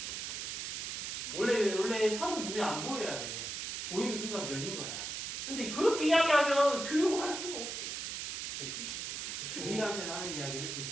원래 선은 눈에 안 보여야 돼. 보이는 순간 면인 거야. 근데 그렇게 이야기하면 교육을 할 수가 없어. 됐지? 중1한테는 하는 이야기를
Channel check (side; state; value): right; noise; hiss, 4 dB below the sound